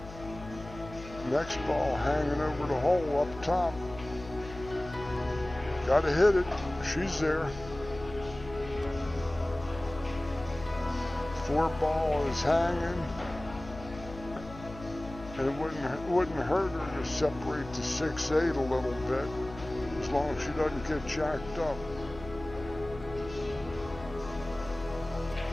next ball hanging over the hole up top. Gotta hit it. She's there. 4 ball is hanging. And it wouldn't hurt her to separate the 6-8 a little bit, as long as she doesn't get jacked up.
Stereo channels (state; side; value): noise; left; hum, 14 dB below the sound